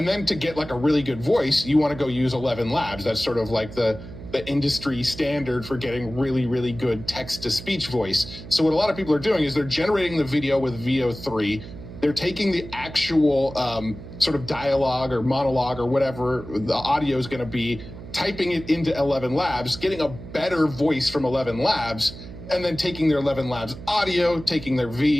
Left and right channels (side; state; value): right; noise; hum, 13 dB below the sound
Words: then to get like a really good voice, you want to go use 11 Labs. That's sort of like the industry standard for getting really, really good text-to-speech voice. So what a lot of people are doing is they're generating the video with VO3. They're taking the actual sort of dialogue or monologue or whatever the audio is going to be, typing it into 11 Labs, getting a better voice from 11 Labs, and then taking their 11 Labs audio, taking their